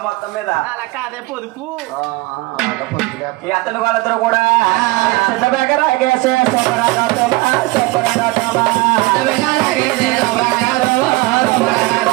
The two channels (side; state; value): left; quieter; 21.9 dB